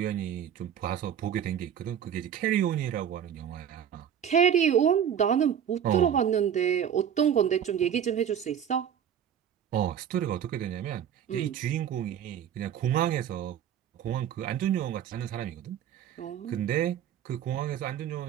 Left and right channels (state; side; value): quieter; left; 9.1 dB